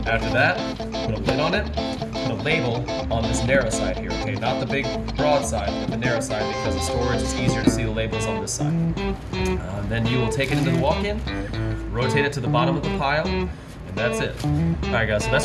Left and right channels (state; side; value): identical; both; correlation 1.00